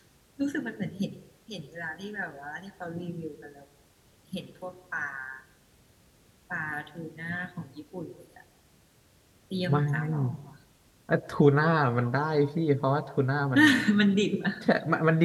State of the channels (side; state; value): both; identical; correlation 1.00